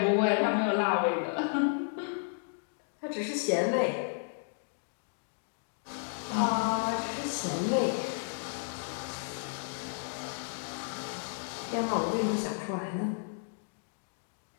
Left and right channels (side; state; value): right; silent; digital silence